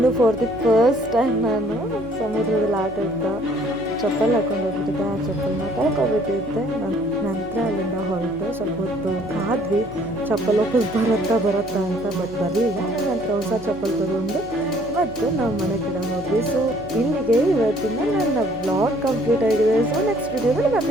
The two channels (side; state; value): left; noise; hum, 17 dB below the sound